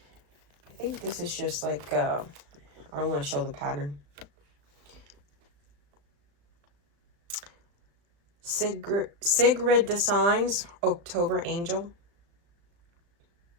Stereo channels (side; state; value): left; late; 36 ms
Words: I think this is just like, I don't want to show the pattern. Sigrid Designs, October Angel.